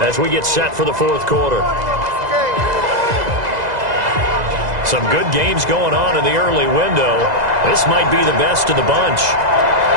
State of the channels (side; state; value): left; late; 2.0 ms